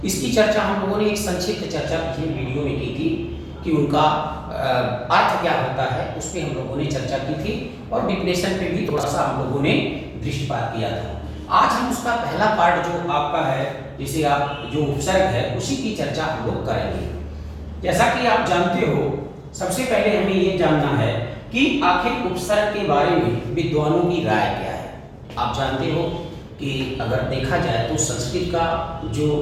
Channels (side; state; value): both; identical; correlation 1.00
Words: इसकी चर्चा हम लोगों ने एक संक्षिप्त चर्चा पिछले वीडियो में की थी कि उनका अर्थ क्या होता है, उस पर हम लोगों ने चर्चा की थी और डिफिनेशन पे भी थोड़ा सा हम लोगों ने दृष्टिपात किया था। आज हम उसका पहला पार्ट जो आपका है, जिसे आप जो उपसर्ग है, उसी की चर्चा हम लोग करेंगे। जैसा कि आप जानते हो, सबसे पहले हमें ये जानना है कि आखिर उपसर्ग के बारे में विद्वानों की राय क्या है। आप जानते हो कि अगर देखा जाए तो संस्कृत का जो